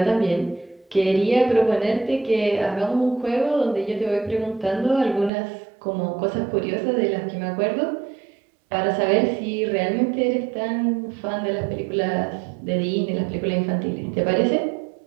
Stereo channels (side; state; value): left; drops out; at 5.3 s